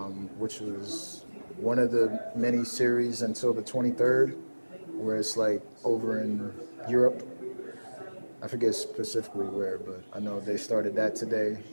which was one of the many series until the 23rd, where it's like over in Europe. I forget specifically where, but I know they started that today,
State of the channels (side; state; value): both; inverted; correlation -1.00